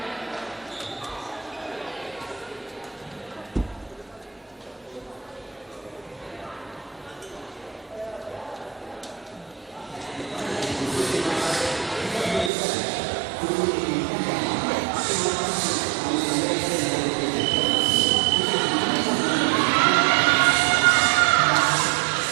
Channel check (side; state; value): left; drops out; at 12.5 s